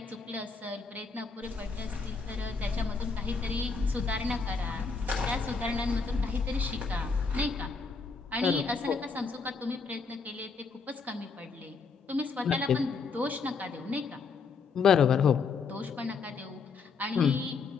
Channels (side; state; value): right; quieter; 5.0 dB